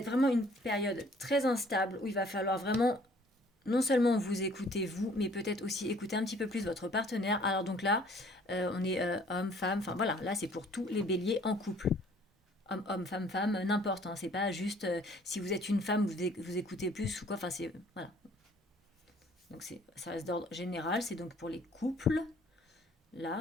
vraiment une période très instable où il va falloir vraiment non seulement vous écoutez vous, mais peut-être aussi écouter un petit peu plus votre partenaire. Alors donc là, on est homme, femme, enfin voilà, là c'est pour tous les béliers en couple. Homme, homme, femme, femme, n'importe. Hein, c'est pas juste si vous êtes une femme, vous écoutez plus ou quoi. Enfin c'est voilà. Donc ça reste d'ordre général. C'est donc pour les couples.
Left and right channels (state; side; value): normal; both; correlation 0.57